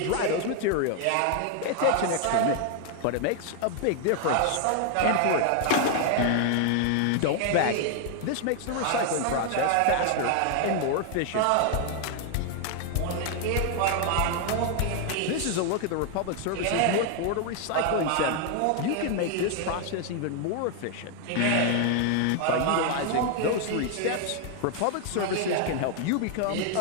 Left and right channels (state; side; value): different; both; correlation 0.00